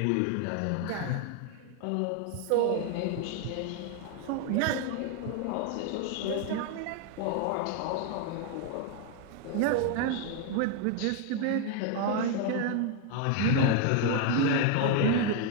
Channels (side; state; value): both; different; correlation 0.00